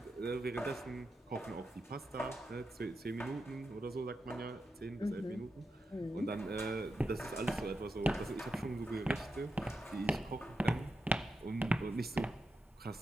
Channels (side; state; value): both; normal; correlation 0.87